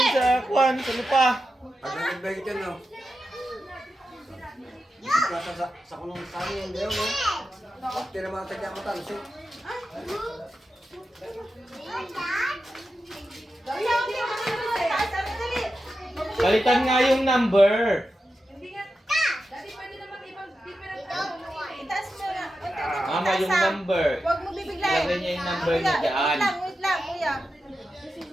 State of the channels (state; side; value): normal; both; correlation 0.90